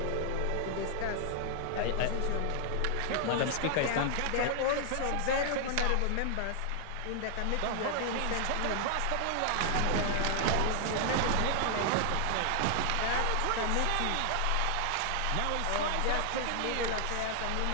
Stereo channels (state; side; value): different; both; correlation 0.00